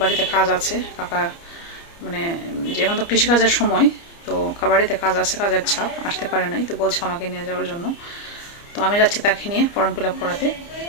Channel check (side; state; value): right; late; 29 ms